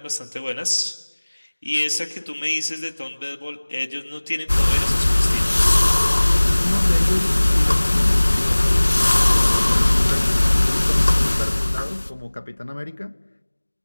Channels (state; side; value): inverted; both; correlation -1.00